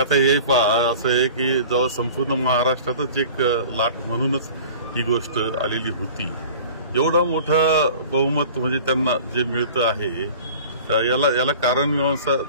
हे असं आहे की जेव्हा संपूर्ण महाराष्ट्रातच एक लाट म्हणूनच ही गोष्ट आलेली होती, एवढा मोठा बहुमत म्हणजे त्यांना जे मिळतं आहे याला कारण मीमांसा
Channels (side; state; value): both; inverted; correlation -0.43